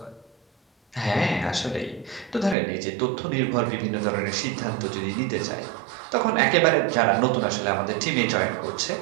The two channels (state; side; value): drops out; left; at 2.6 s